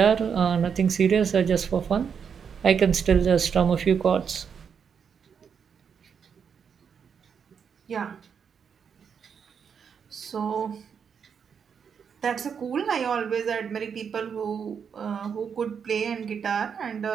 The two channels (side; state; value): left; quieter; 6.9 dB